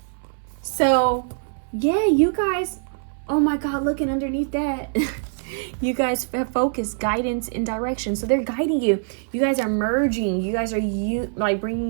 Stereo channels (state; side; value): silent; left; 63 dB below the other